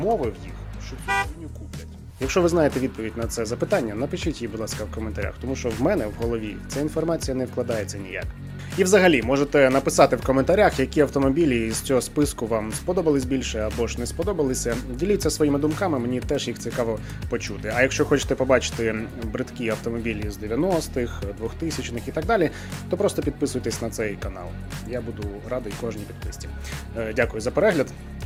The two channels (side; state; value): both; identical; correlation 1.00